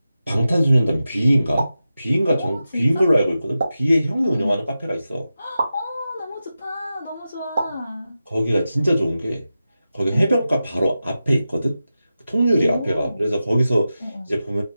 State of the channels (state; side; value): inverted; both; correlation -0.92